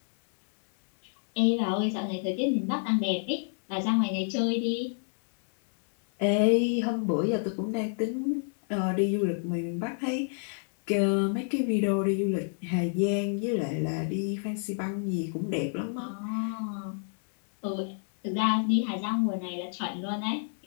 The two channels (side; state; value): right; silent; 59 dB below the other